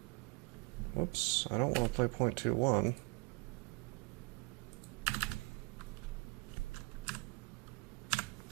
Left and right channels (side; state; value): left; quieter; 28.7 dB